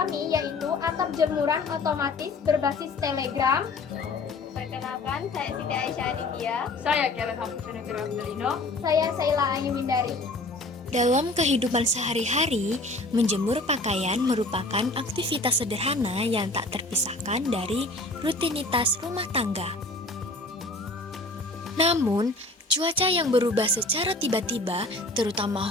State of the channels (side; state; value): right; quieter; 3.0 dB